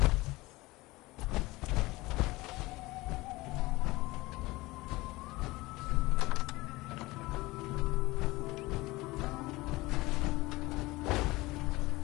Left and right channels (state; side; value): quieter; right; 20.8 dB